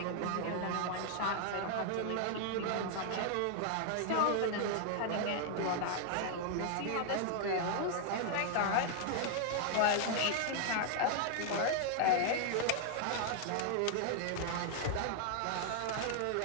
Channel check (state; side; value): different; both; correlation 0.00